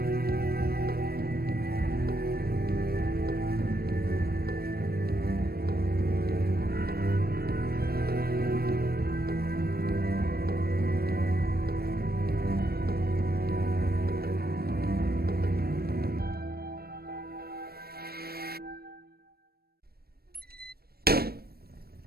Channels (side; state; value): left; late; 0.45 ms